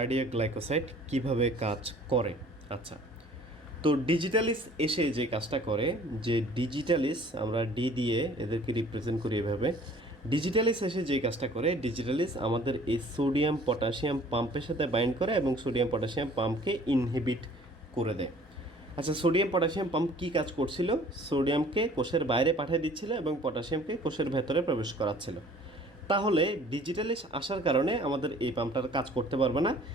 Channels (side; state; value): both; normal; correlation 0.52